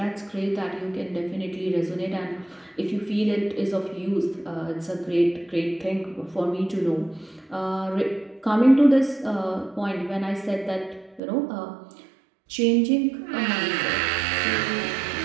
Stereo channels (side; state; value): left; drops out; at 11.2 s